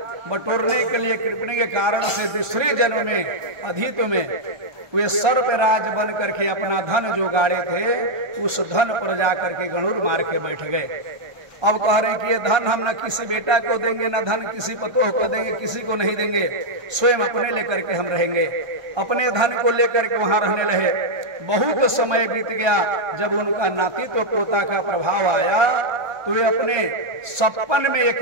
बटोरने के लिए कृपणी के कारण से दूसरे जन्म में अधित में वे सर्पराज बन करके अपना धन जो गाड़े थे उस धन पर जाकर के गणुर मार के बैठ गए। अब कह रहे कि ये धन हम न किसी बेटा को देंगे, न धन किसी पतोह को देंगे, किसी को नहीं देंगे, स्वयं अपने लेकर के हम रहेंगे। अपने धन को लेकर के वहां रहने लगे। बहुत समय बीत गया। जब उनका नातीत्व पोता का प्रभाव आया तो वे अपने सपन में एक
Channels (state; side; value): late; left; 1.3 ms